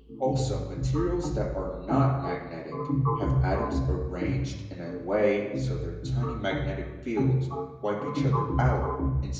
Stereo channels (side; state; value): both; identical; correlation 1.00